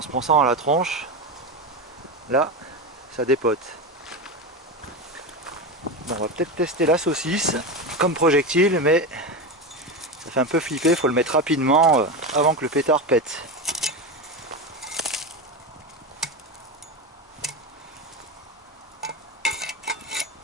se prend ça dans la tronche, là, ça dépote. Bon, on va peut-être tester la saucisse comme projectile, mais ça fait un peu flipper, il faut le mettre rapidement avant que le pétard pète.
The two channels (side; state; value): both; normal; correlation 0.19